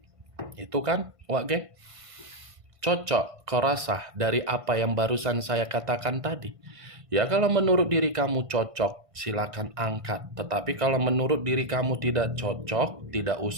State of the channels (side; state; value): left; late; 1.5 ms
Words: Itu kan, Wak Geng? Cocok, kau rasa dari apa yang barusan saya katakan tadi? Ya, kalau menurut diri kamu cocok, silakan angkat. Tetapi kalau menurut diri kamu tidak cocok, tidak